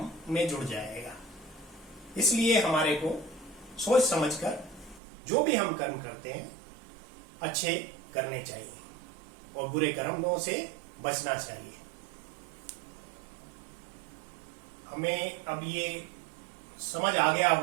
में जुड़ जाएगा। इसलिए हमारे को सोच समझकर जो भी हम कर्म करते हैं अच्छे करने चाहिए और बुरे कर्मों से बचना चाहिए। हमें अब ये समझ आ गया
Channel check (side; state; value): left; drops out; at 5.0 s